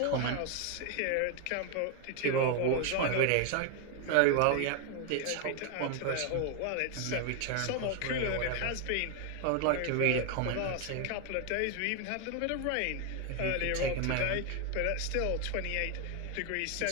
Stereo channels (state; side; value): different; both; correlation 0.01